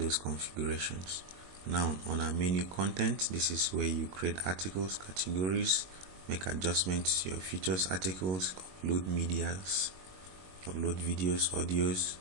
configurations. Now on our menu content, this is where you create articles, categories, make adjustments to your features articles, upload medias, upload videos, audios,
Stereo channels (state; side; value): late; left; 22 ms